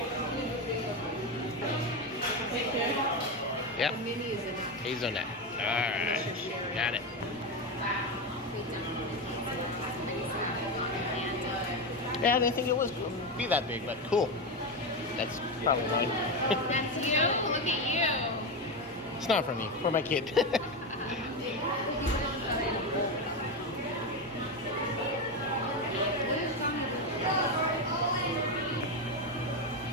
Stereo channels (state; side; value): normal; both; correlation 0.14